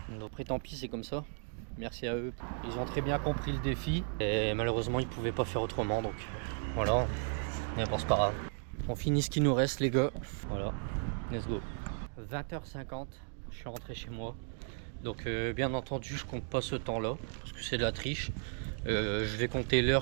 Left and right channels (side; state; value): left; silent; 54 dB below the other